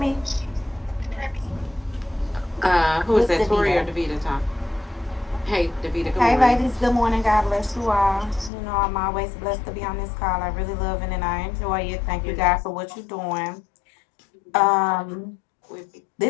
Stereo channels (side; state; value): right; drops out; at 8.5 s